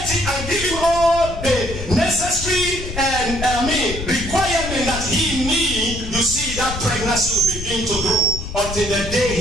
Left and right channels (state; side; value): noise; left; rumble, 8 dB below the sound